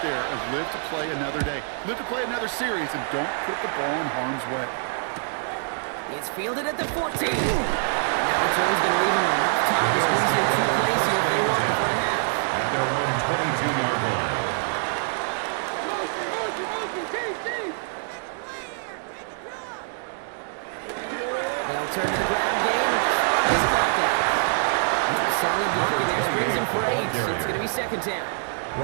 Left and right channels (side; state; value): left; silent; digital silence